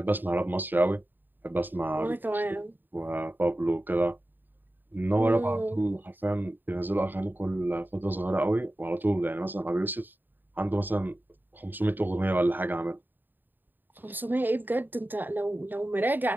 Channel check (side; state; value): left; late; 0.091 ms